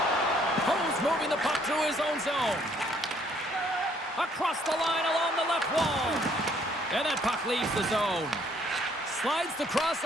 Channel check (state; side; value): normal; both; correlation 0.64